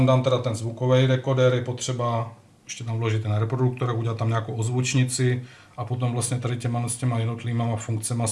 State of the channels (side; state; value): both; identical; correlation 1.00